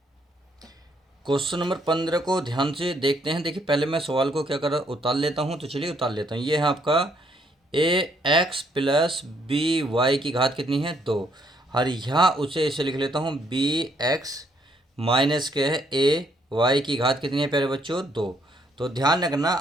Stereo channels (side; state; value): both; normal; correlation 0.70